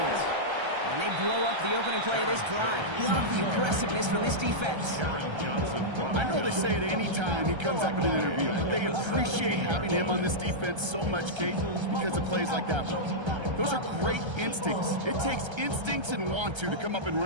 And they blow up the opening play of this drive. Love the aggressiveness from this defense. I know they say it any time he comes up in an interview, but they appreciate having him on this defense so much, Kate, because of plays like that one. Those are great instincts. It takes instincts and want to come up and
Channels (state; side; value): late; left; 1.3 ms